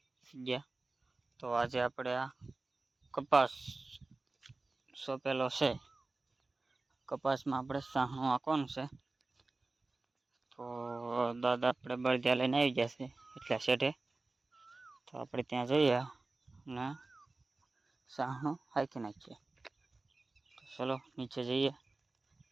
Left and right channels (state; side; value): quieter; left; 3.3 dB